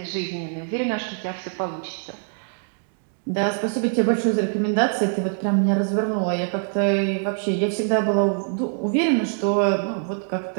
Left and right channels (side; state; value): left; silent; 63 dB below the other